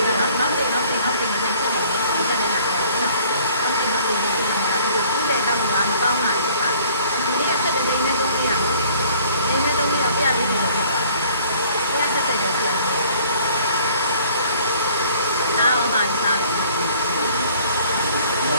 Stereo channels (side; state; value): both; inverted; correlation -0.56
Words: နော်နောက်ပြန်ပြန်ဆက်တယ်နော်ဒီကနေ့မှပြောနော်နောက်ပြန်ပြန်သူ့ရဲ့တောင်းတာမကောင်းတာဖြစ်ပါဒီနေ့ဆက်တဲ့နေသုံးရနော်နေနဲ့သုံးရပြရလေးလို့ဖြစ်သွားတယ်ဆက်တဲ့ရောပြန်တယ်နားအောင်ပါစားတယ်